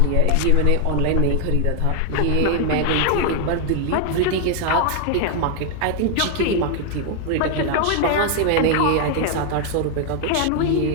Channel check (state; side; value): different; both; correlation 0.00